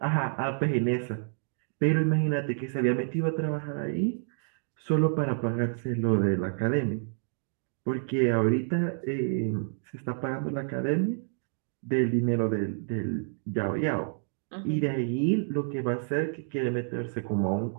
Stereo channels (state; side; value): silent; left; digital silence